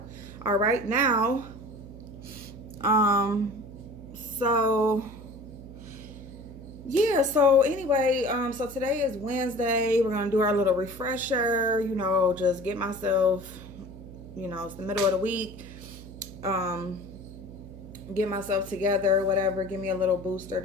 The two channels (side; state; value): right; noise; hum, 15 dB below the sound